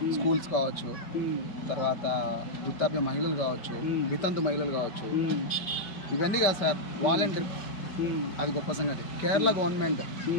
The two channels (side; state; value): right; late; 5.1 ms